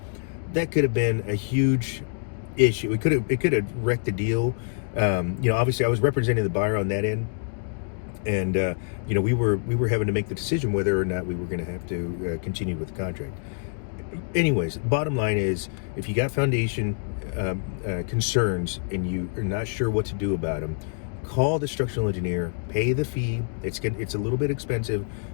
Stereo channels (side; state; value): right; silent; 61 dB below the other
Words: that could have been a huge issue. It could have wrecked the deal. Obviously I was representing the buyer on that end, and we were having to make the decision whether or not we were going to have to continue with the contract. Anyways, bottom line is, if you got foundation concerns and you are not sure what to do about them, call the structural engineer, pay the fee. It's a little bit expensive.